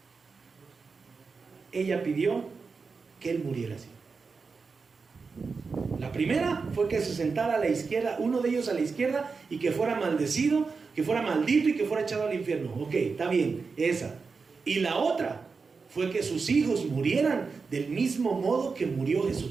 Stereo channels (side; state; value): left; quieter; 4.8 dB